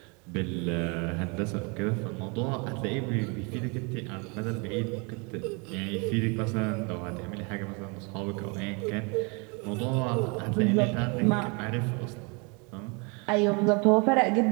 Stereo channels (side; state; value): left; quieter; 31.8 dB